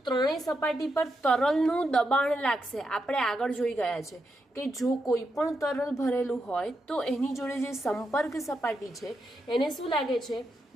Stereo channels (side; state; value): both; normal; correlation 0.84